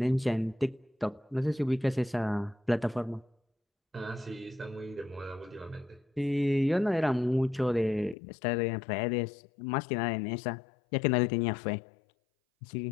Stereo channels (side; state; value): right; drops out; at 8.2 s